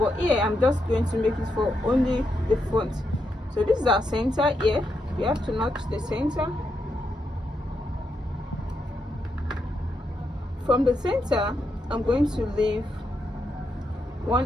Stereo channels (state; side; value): normal; both; correlation 0.82